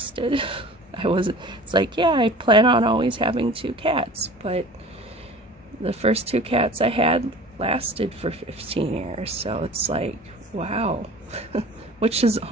It's like, yeah, I plan on always having 2 cats, but the first 2 cats I had lasted for 15 years, so it's like, wow, which is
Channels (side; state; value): both; normal; correlation 0.42